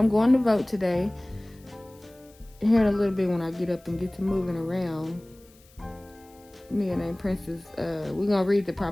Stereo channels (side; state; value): left; noise; hiss, 28 dB below the sound